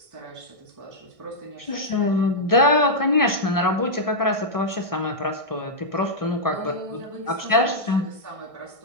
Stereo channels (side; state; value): left; late; 1.6 ms